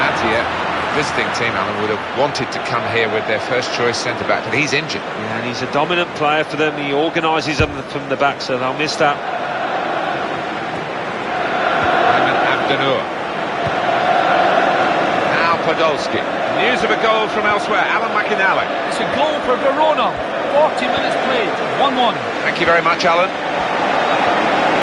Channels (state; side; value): identical; both; correlation 1.00